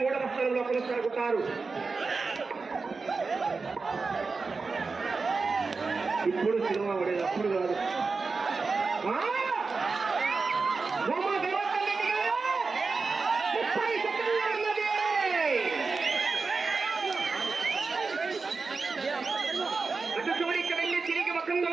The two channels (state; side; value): quieter; left; 4.3 dB